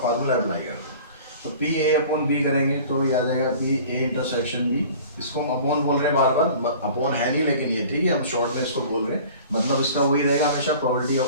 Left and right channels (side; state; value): both; inverted; correlation -0.45